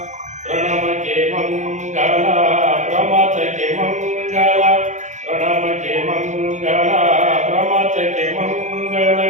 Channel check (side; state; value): left; late; 0.35 ms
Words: ಪ್ರಣಮಕ್ಕೆ ಮಂಗಲ, ಪ್ರಮಥಕ್ಕೆ ಮಂಗಲ, ಪ್ರಣಮಕ್ಕೆ ಮಂಗಲ, ಪ್ರಮಥಕ್ಕೆ ಮಂಗಲ,